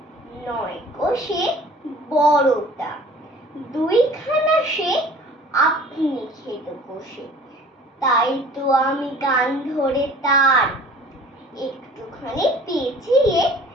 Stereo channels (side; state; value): both; normal; correlation 0.48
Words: নয় গো সে বড়টা, দুইখানা সে আপনি খেত বসে। তাই তো আমি কান ধরে তার একটুখানি পেঁচিয়ে